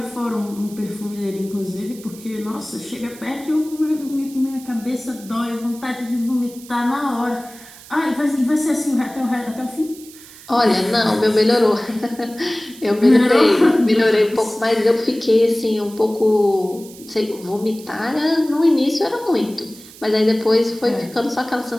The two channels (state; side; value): noise; right; hiss, 19 dB below the sound